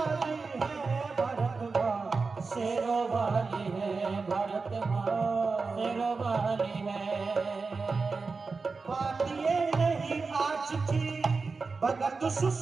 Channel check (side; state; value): left; quieter; 4.4 dB